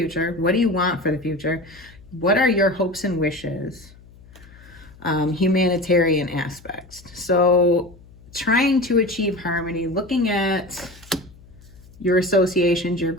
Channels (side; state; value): left; noise; hum, 23 dB below the sound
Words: What do you want for the future? What are your hopes and wishes? Humanitarian aspects. So trying to achieve harmony, looking at your associations, your